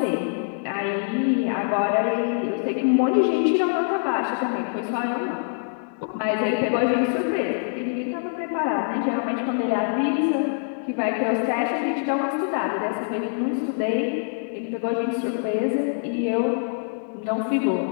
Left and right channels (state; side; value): silent; right; digital silence